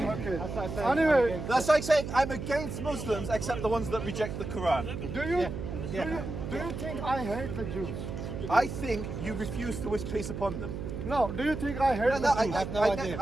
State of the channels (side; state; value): right; noise; hum, 6 dB below the sound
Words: Anyway, That's like saying I'm against Muslims except the ones that reject the Quran. do you think I hate the Jews? I think you refuse to wish peace upon them. No, do you think I hate the Jews? I have no